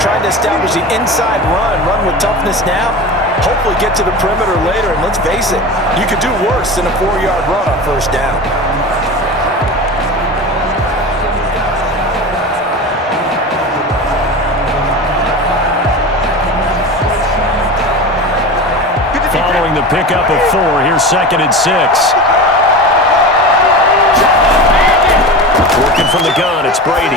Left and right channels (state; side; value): normal; both; correlation 0.29